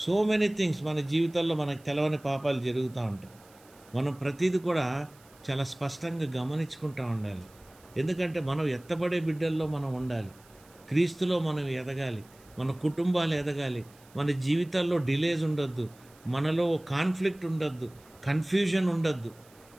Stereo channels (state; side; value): noise; right; hiss, 27 dB below the sound